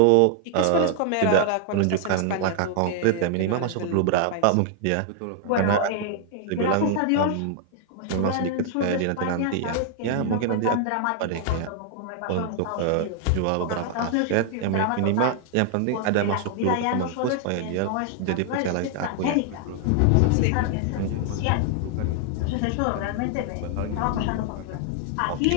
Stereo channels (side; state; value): both; different; correlation 0.00